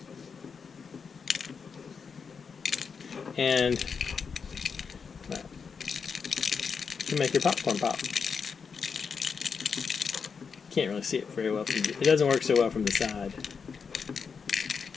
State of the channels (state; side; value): quieter; right; 5.8 dB